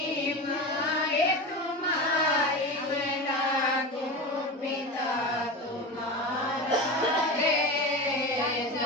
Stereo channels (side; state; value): both; normal; correlation 0.25